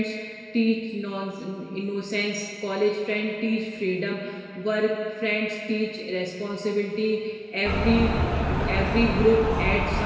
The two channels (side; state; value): both; identical; correlation 1.00